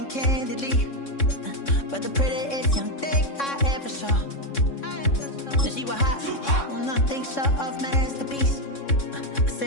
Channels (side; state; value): right; late; 3.6 ms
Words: candidly, but the prettiest young thing I ever saw. And she was hot, well, nothing short of masterpiece. I